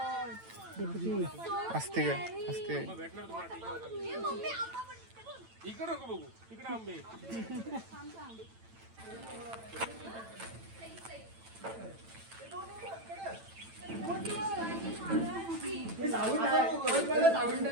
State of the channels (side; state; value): left; late; 8.9 ms